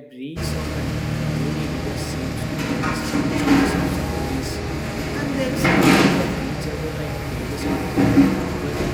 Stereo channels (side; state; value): both; identical; correlation 1.00